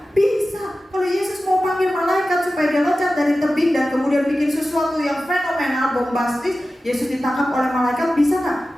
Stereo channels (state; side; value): normal; both; correlation 0.94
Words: Bisa. Kalau Yesus mau panggil malaikat supaya dia loncat dari tebing dan kemudian bikin sesuatu yang fenomenal, bombastis, Yesus ditangkap oleh malaikat, bisa